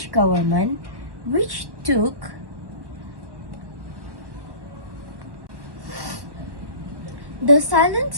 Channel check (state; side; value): late; left; 1.0 ms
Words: government, which took the silence